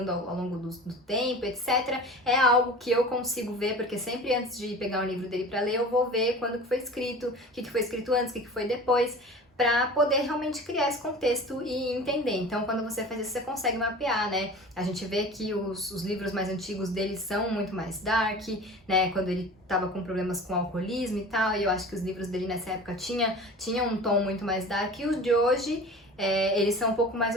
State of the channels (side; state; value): both; normal; correlation 0.38